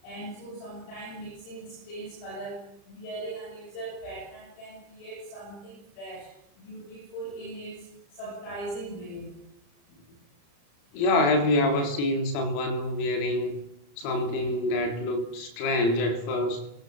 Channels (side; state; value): right; late; 35 ms